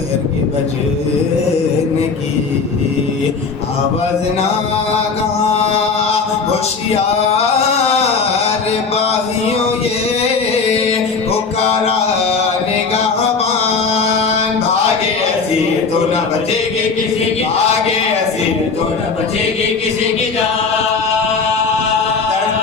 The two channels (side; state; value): right; quieter; 4.8 dB